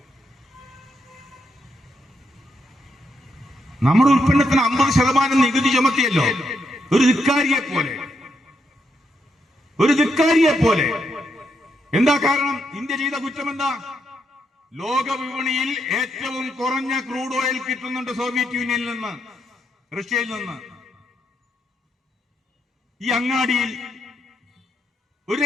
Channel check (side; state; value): both; normal; correlation 0.79